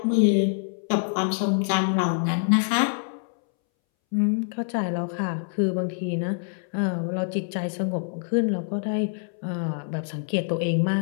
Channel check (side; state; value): right; silent; 61 dB below the other